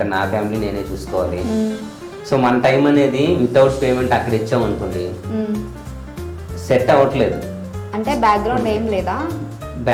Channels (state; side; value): identical; both; correlation 1.00